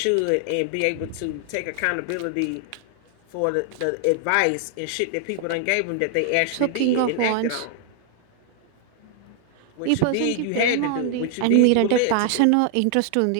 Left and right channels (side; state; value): both; different; correlation 0.00